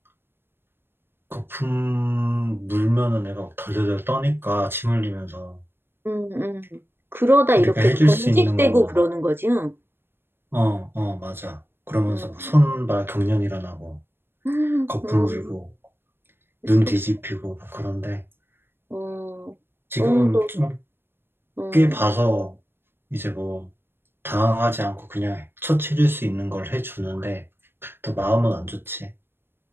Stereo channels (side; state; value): left; late; 0.10 ms